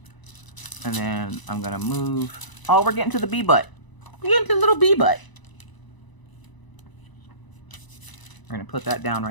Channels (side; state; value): right; late; 1.0 ms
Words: And then I'm going to move. Oh, we're getting to the bee butt. We're getting to the little bee butt. We're going to put that down